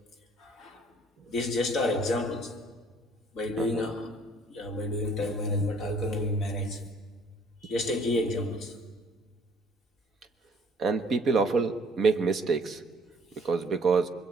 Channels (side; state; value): both; normal; correlation 0.58